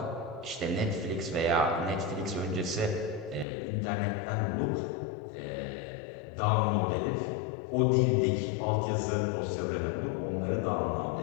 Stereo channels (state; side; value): drops out; right; at 3.5 s